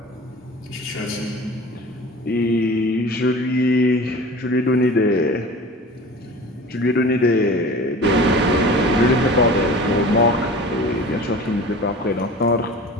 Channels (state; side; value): normal; both; correlation 0.39